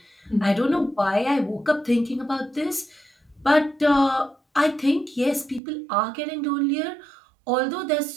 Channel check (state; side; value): drops out; left; at 5.6 s